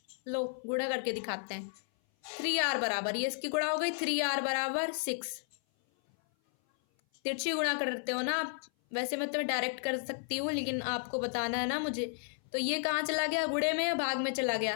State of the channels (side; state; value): right; silent; 56 dB below the other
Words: गुणा करके दिखाते हैं। 3r बराबर, ये इसकी गुणा हो गई, 3r बराबर 6। तिरछी गुणा करते हो ना आप, वैसे मैं तुम्हें डायरेक्ट कर सकती हूँ, लेकिन आपको बताना है ना मुझे। तो ये कहाँ चला गया, गुणे में, भाग में चला गया।